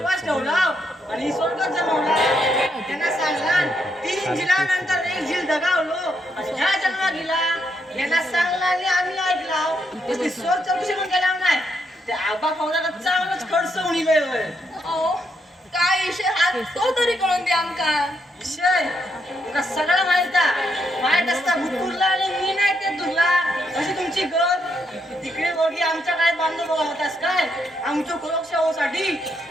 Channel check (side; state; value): both; normal; correlation 0.78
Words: ठेवला आणि स्वर्गात जमवला. त्यांना सांगला 3 झिलानंतर 1 झील दगावलो आणि ह्या जन्मा गेला. यांना सांगला आणि आम्ही ऐकला. तसली स्वर चौकशी पण केला नाही. त्या आबा पोराला चांगलंच खडसवून इलंय होय. अहो काय विषय हा तो तरी कळून द्या आमका. विषय तुला सगळं माहित असता भूतुरला आणि मी नाही ते तुला. अशी तुमची गत तिकडे वगी आमच्या काय बांधून होतास काय आमच्या सुरक्षा होसाठी.